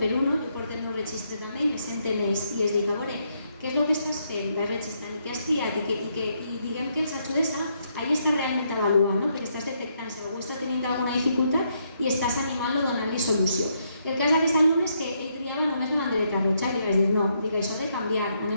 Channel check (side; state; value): both; inverted; correlation -0.76